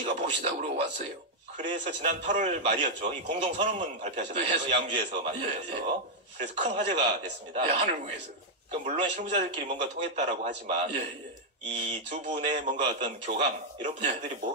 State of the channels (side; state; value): both; normal; correlation -0.02